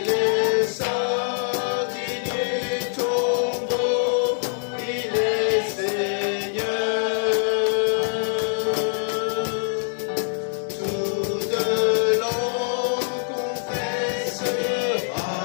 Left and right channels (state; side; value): silent; right; 63 dB below the other